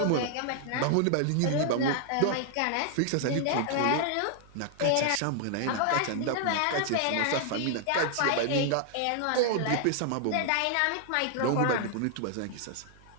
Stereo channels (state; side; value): different; both; correlation 0.00